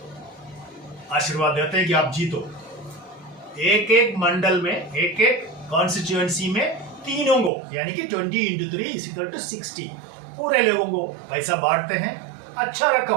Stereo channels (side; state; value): left; drops out; at 7.5 s